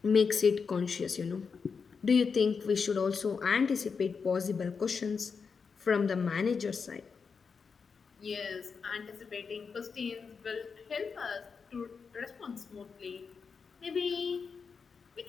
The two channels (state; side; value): quieter; right; 5.5 dB